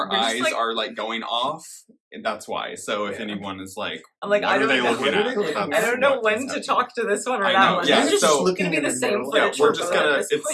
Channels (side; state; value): both; identical; correlation 1.00